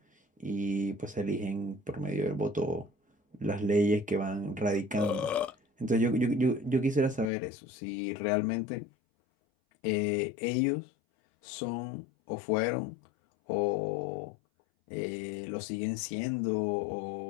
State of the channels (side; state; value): right; drops out; at 7.3 s